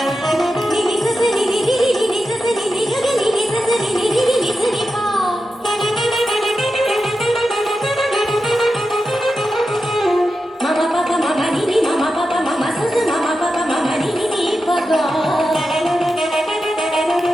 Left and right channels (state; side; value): normal; both; correlation 0.90